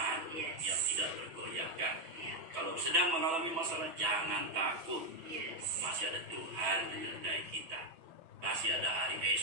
Yes. yang tidak tergoyahkan. Iya. Kalau sedang mengalami masalah, jangan takut. Yes. Masih ada Tuhan menyertai kita. Masih ada hari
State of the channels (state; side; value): late; left; 6.2 ms